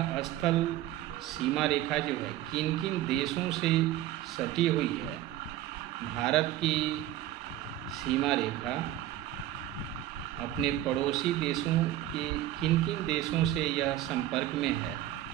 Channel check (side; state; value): left; quieter; 13.6 dB